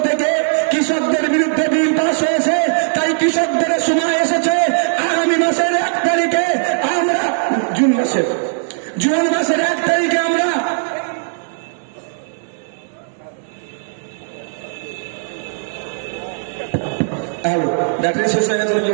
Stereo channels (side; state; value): left; silent; digital silence